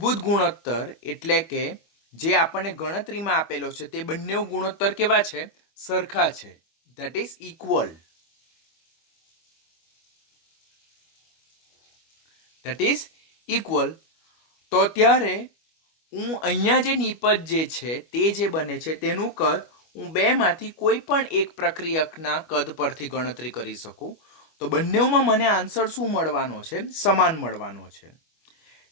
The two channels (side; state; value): right; late; 25 ms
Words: ગુણોત્તર એટલે કે જે આપણને ગણતરીમાં આપેલો છે તે બંને ગુણોત્તર કેવા છે? સરખા છે. That is equal. તો ત્યારે હું અહીંયા જે નિપજ જે છે તે જે બને છે તેનું કદ હું બેમાંથી કોઈ પણ એક પ્રક્રિયકના કદ પરથી ગણતરી કરી શકું. તો બંનેમાં મને આન્સર શું મળવાનો છે? સમાન મળવાનો છે.